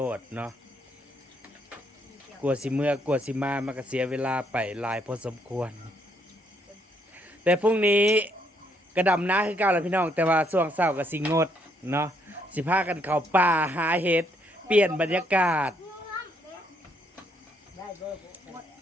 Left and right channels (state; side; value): normal; both; correlation 0.72